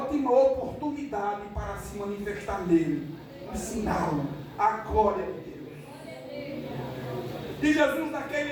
oportunidade para se manifestar nele, ensiná-lo a glória de Deus. E Jesus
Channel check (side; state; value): both; identical; correlation 1.00